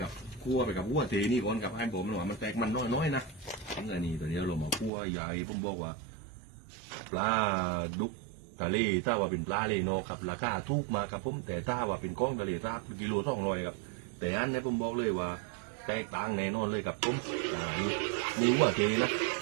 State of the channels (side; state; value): left; drops out; at 4.9 s